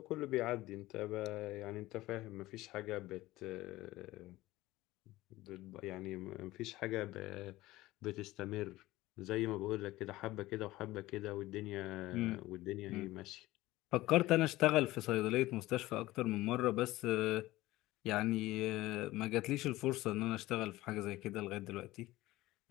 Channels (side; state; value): right; quieter; 17.7 dB